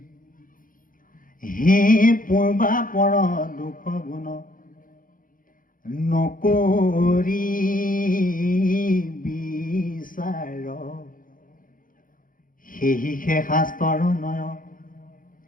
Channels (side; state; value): right; late; 0.40 ms